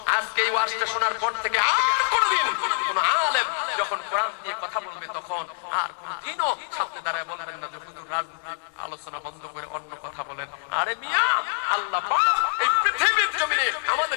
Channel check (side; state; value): right; silent; digital silence